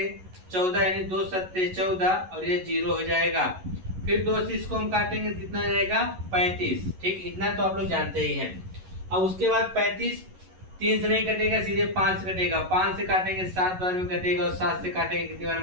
14, यानी 2 सत्ते 14 और ये 0 हो जाएगा। फिर 2 से इसको हम काटेंगे, कितना जाएगा 35। ठीक, इतना तो आप लोग जानते ही हैं। अब उसके बाद 35 3 से नहीं कटेगा, सीधे 5 से कटेगा, 5 से काटेंगे 7 बार में कटेगा और 7 से काटेंगे कितनी बार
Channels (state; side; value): late; left; 11 ms